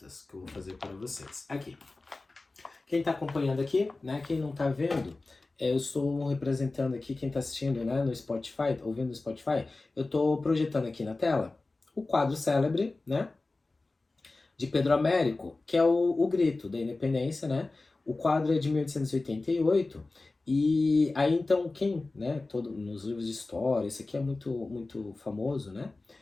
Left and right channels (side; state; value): right; quieter; 3.3 dB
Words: que eu vou fazer para vocês. Aqui. Quem tá acompanhando aqui, né? Quem não tá vendo, eu estou representando aqui, quem tá assistindo, né, no Spotify, ouvindo no Spotify, eu tô projetando aqui na tela o quadro célebre, né, de Pedro Américo, que é o Grito da Independência, né? O quadro é de 1888, e aí então quem, né, nos livros de história, esse aqui é muito famoso, né?